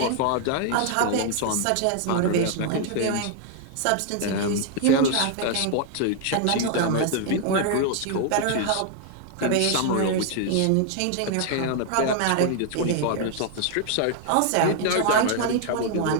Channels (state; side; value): different; both; correlation 0.00